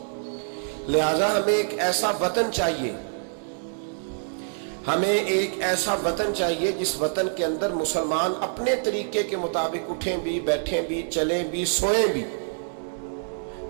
لہذا ہمیں ایک ایسا وطن چاہیے، ہمیں ایک ایسا وطن چاہیے جس وطن کے اندر مسلمان اپنے طریقے کے مطابق اٹھیں بھی، بیٹھیں بھی، چلیں بھی، سوئیں بھی.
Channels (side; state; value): left; silent; digital silence